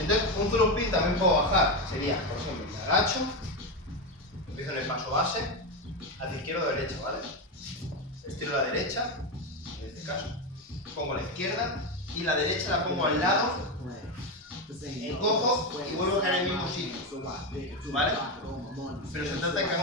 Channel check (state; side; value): normal; both; correlation 0.12